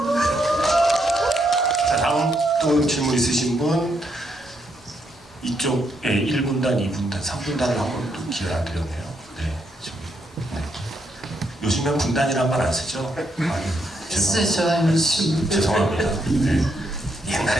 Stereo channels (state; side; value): normal; both; correlation 0.77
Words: 자, 다음 또 질문 있으신 분, 이쪽에 1분단, 2분단, 3분단을 한 번 또 기회를 안 드렸네요. 네, 저기. 네. 요즘엔 분단이란 말 안 쓰죠? 아니, 죄송합니다. 네.